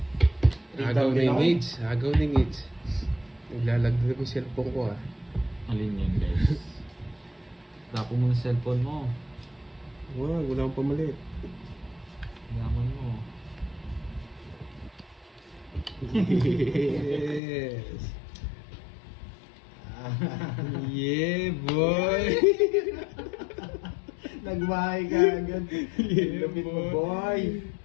Agaw na yung hits. Agaw na yung hits. Naglalagdag ko yung cellphone ko ah. Alin yan guys. Tapo mo yung cellphone mo. Wow, wala akong pamalit. Yaman mo. Yes. Yeah, boy. Nagbahay ka agad. Yeah, Lupit mo, boy. boy.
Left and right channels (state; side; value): drops out; right; at 17.4 s